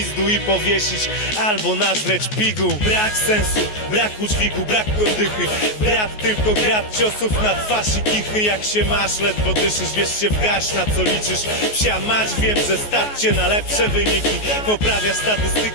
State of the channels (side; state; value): right; late; 14 ms